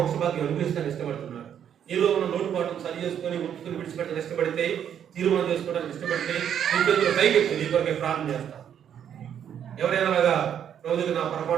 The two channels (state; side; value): quieter; left; 9.1 dB